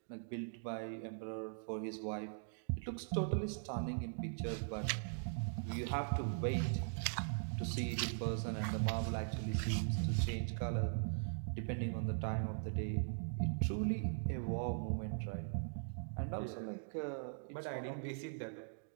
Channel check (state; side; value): silent; left; digital silence